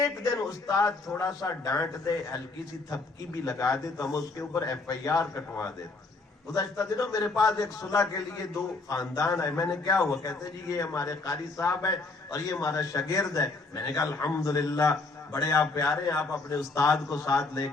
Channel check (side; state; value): right; quieter; 3.6 dB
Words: دن استاد تھوڑا سا ڈانٹ دے، ہلکی سی تھپکی بھی لگا دے تو ہم اس کے اوپر FIR کٹوا دیتے۔ گزشتہ دنوں میرے پاس ایک صلح کے لیے 2 خاندان آئے، میں نے کیا ہوا؟ کہتے جی یہ ہمارے قاری صاحب ہے اور یہ ہمارا شاگرد ہے۔ میں نے کہا الحمدللہ بڑے آپ پیارے ہیں، آپ اپنے استاد کو ساتھ لے